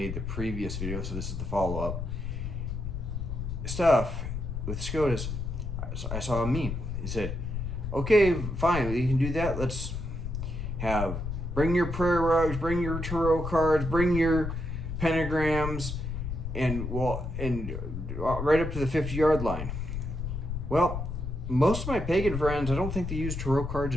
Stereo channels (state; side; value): noise; left; rumble, 5 dB below the sound